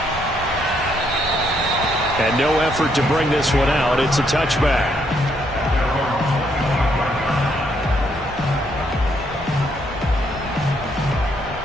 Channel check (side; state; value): both; normal; correlation 0.73